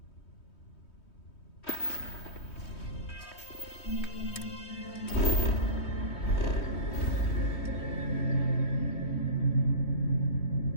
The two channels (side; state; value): right; late; 3.2 ms